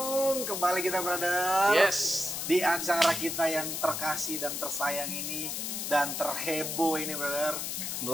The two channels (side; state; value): left; noise; hiss, 3 dB below the sound